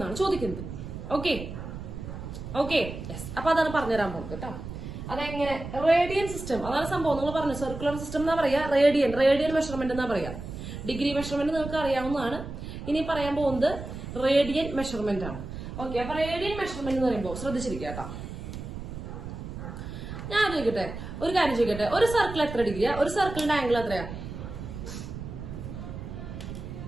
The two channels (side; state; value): right; noise; rumble, 9 dB below the sound